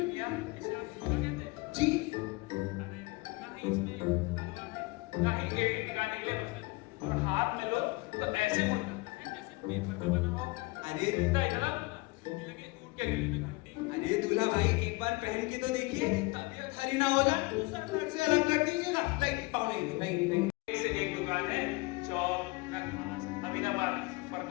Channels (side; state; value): right; quieter; 24.6 dB